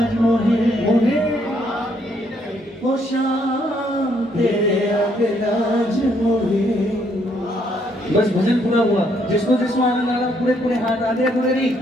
मोहे ओ शाह, तेरे आगे लाज मोहे। बस भजन पूरा हुआ, जिसको जिसको आनंद आ रहा पूरे पूरे हाथ आधे अधूरे नहीं,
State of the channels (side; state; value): both; normal; correlation 0.71